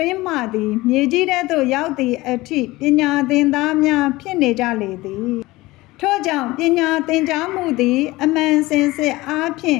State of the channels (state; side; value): quieter; right; 19.8 dB